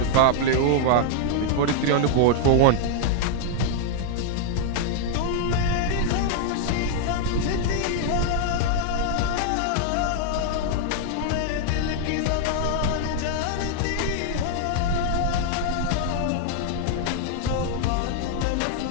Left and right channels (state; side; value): different; both; correlation 0.00